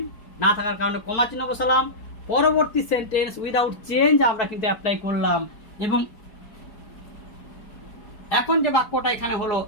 না থাকার কারণে কমা চিহ্ন বসালাম। পরবর্তী সেন্টেন্স উইদাউট চেঞ্জ আমরা কিন্তু অ্যাপ্লাই করলাম। এবং এখন যে বাক্যটা এখানে হলো,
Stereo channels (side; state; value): right; late; 4.7 ms